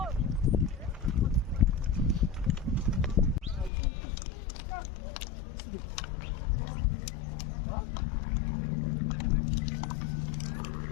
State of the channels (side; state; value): right; drops out; at 3.7 s